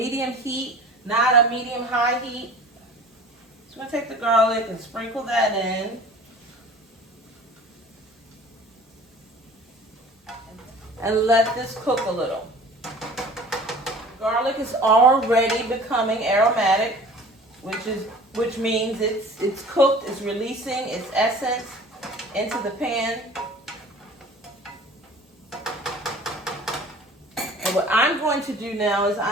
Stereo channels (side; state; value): both; normal; correlation 0.44